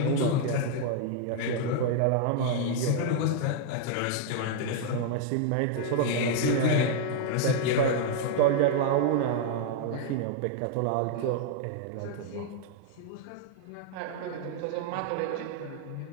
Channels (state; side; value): different; both; correlation 0.00